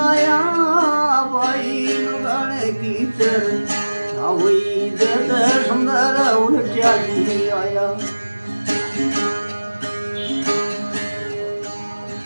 भाई दुर्गाने की चरचा भई जद सुंदर उलट्याली आया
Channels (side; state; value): both; inverted; correlation -1.00